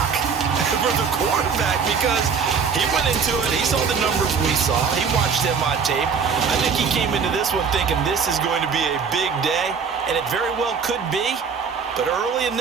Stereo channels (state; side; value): quieter; left; 5.9 dB